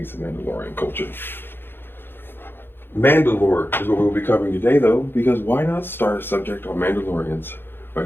some Mandalorian culture. Mandalore is what we'll be covering today, though, because why not start a subject on Mandalorians by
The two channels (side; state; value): right; late; 0.10 ms